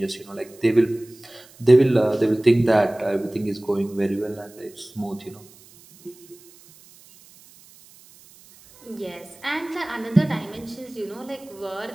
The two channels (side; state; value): right; noise; hiss, 25 dB below the sound